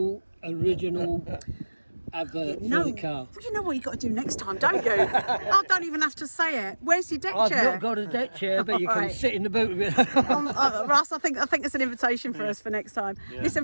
advert No, for the car. you know what you got to do next time, don't you? I don't even have to say it. Where's your deck I've chair? not got a deck chair, but you can Alright. sit in the boat with it. Russ, I think it's an invitation for us for next time.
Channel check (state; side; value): inverted; both; correlation -1.00